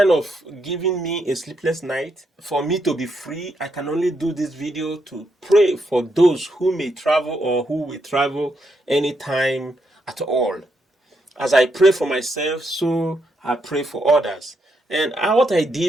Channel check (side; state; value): both; normal; correlation 0.79